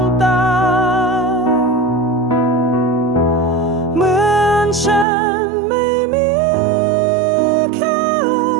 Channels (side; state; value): left; drops out; at 5.1 s